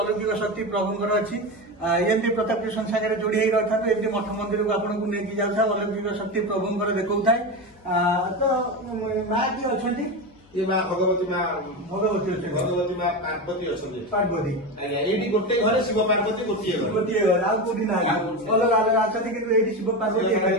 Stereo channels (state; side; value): noise; left; hum, 30 dB below the sound